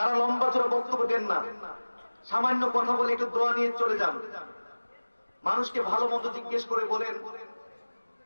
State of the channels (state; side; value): inverted; both; correlation -1.00